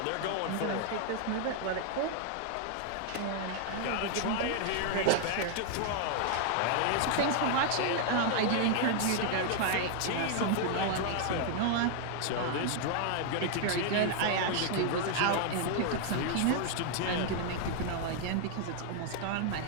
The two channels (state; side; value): different; both; correlation 0.00